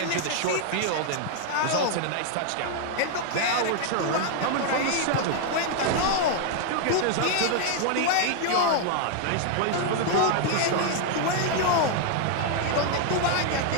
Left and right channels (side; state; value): both; different; correlation 0.00